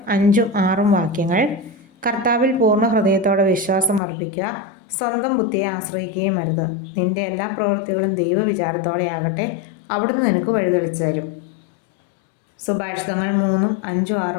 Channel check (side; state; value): right; drops out; at 4.0 s